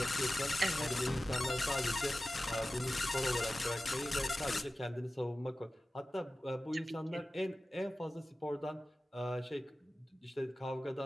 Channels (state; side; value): normal; both; correlation 0.95